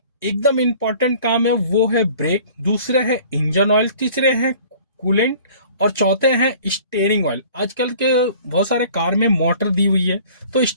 एकदम इंपॉर्टेंट काम है वो है ब्रेक, दूसरे है इंजन ऑयल, तीसरे है कूलेंट और चौथे हैं स्टीयरिंग ऑयल। आजकल के बहुत सारे कार में मोटर दी हुई है तो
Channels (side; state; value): both; inverted; correlation -0.49